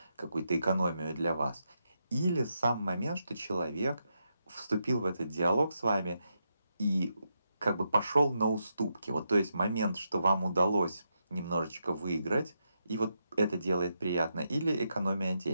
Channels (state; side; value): inverted; both; correlation -0.83